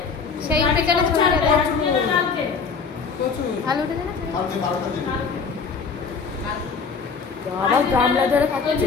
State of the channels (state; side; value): quieter; right; 5.3 dB